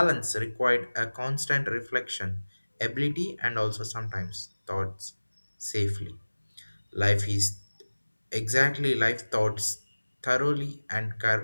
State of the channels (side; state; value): both; inverted; correlation -1.00